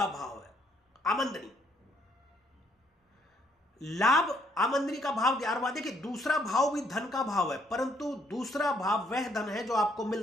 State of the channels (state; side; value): normal; both; correlation 0.69